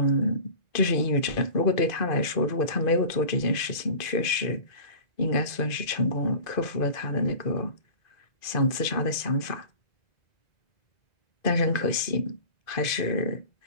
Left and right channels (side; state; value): right; late; 2.5 ms